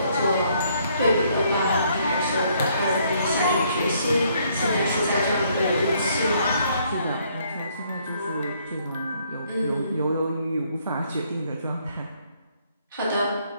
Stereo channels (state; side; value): inverted; both; correlation -0.68